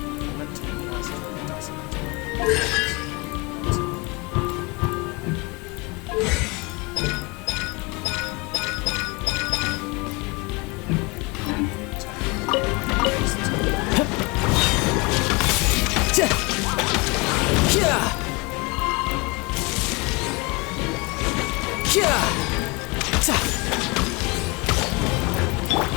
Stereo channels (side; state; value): right; quieter; 27.3 dB